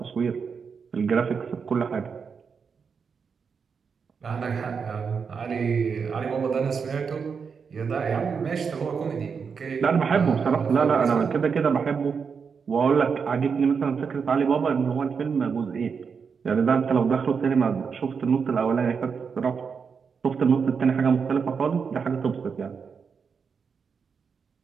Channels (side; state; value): left; quieter; 5.9 dB